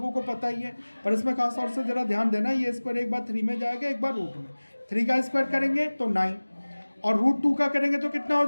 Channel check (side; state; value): both; inverted; correlation -1.00